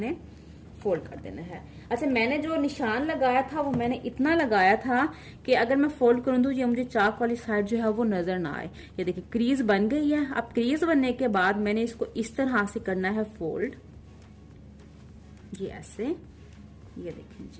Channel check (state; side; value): identical; both; correlation 1.00